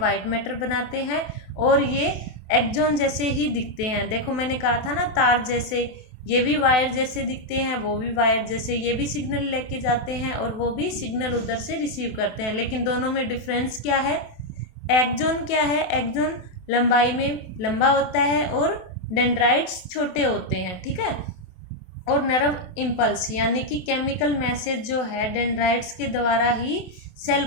मैटर बनाते हैं और ये एक्सोन जैसे ही दिखते हैं। देखो मैंने कहा था ना तार जैसे, ये भी वायर जैसे दिखते हैं, वो भी वायर जैसे। ये भी सिग्नल लेके जाते हैं और वो भी सिग्नल उधर से रिसीव करते हैं। लेकिन दोनों में डिफरेंस क्या है, एक्सोन क्या है, एक्सोन लंबाई में लंबा होता है और डेंड्राइट्स छोटे होते हैं, ठीक है। और नर्व इम्पल्स यानी कि केमिकल मैसेज जो है डेंड्राइट्स के द्वारा ही सेल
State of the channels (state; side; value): late; right; 28 ms